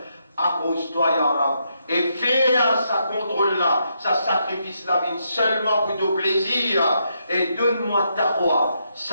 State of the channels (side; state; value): both; inverted; correlation -0.79